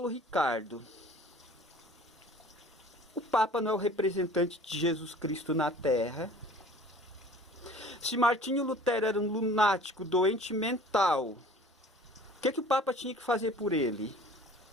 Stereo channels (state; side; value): normal; both; correlation 0.47